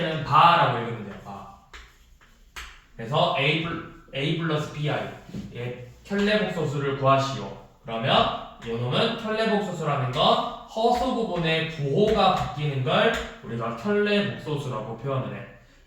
바라고 읽으면 돼요. 바. 그래서 a 플러스 bi의 켤레복소수를 구하시오. 그러면 요놈은 켤레복소수라는 건 허수 부분의 부호가 바뀌는 걸 우리가 켤레복소수라고 표현을 해.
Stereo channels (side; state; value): both; identical; correlation 1.00